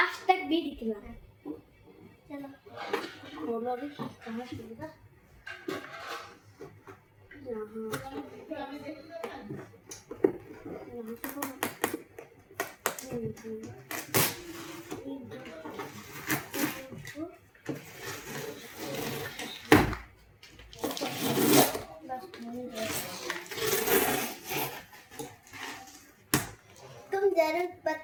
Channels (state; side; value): identical; both; correlation 1.00